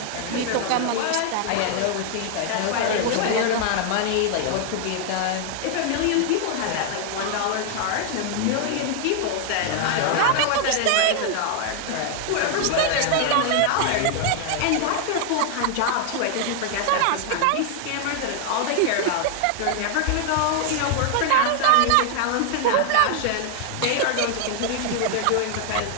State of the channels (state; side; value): different; both; correlation 0.00